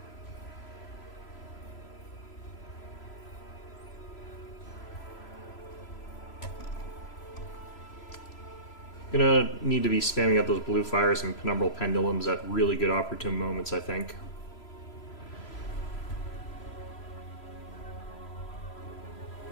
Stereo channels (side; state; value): right; late; 3.0 ms